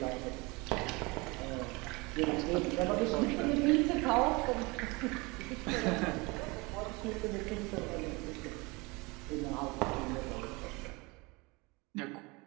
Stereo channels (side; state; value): left; quieter; 25.9 dB